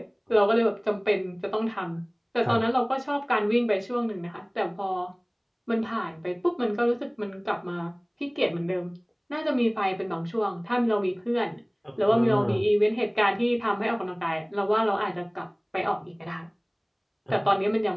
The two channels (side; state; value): both; identical; correlation 1.00